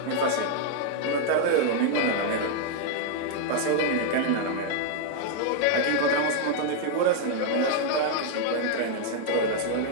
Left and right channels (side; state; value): both; different; correlation 0.00